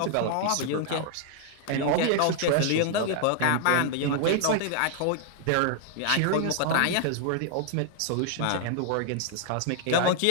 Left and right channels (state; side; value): different; both; correlation 0.00